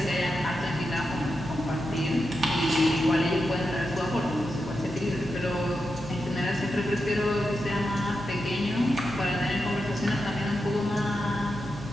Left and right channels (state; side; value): normal; both; correlation 0.88